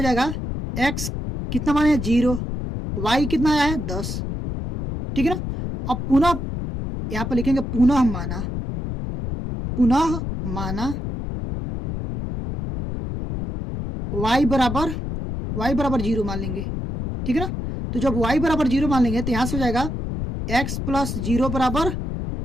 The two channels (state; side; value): noise; left; rumble, 4 dB below the sound